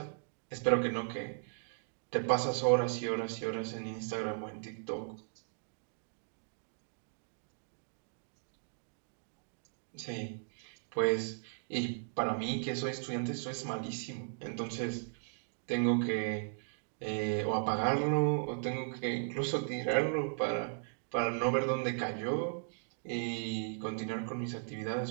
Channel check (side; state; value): left; silent; digital silence